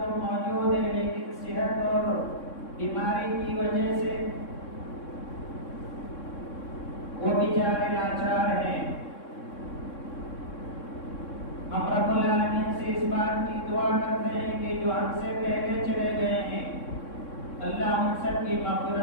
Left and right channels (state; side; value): late; right; 3.6 ms